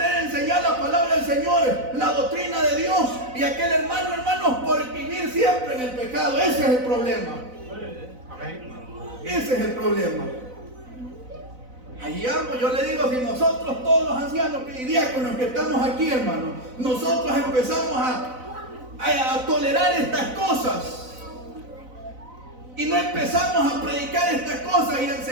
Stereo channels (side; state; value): left; late; 4.0 ms